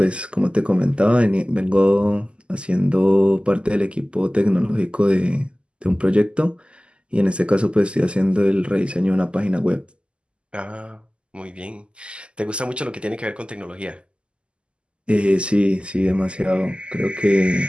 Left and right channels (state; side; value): late; left; 0.052 ms